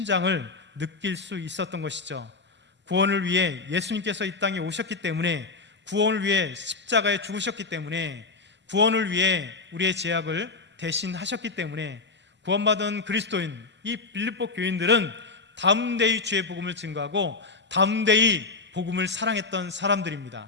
느낄 수 있었던 것이죠. 구원을 위해 예수님께서 이 땅에 오셨기 때문에, 구원을 위해 십자가에 죽으셨기 때문에, 구원을 위해 우리의 죄악을 대신하셨기 때문에 구원받은 그리스도인 이 빌립보 교인들은 담대히 주의 복음을 증거하고 담대히 복음을 사랑했던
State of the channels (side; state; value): right; quieter; 4.1 dB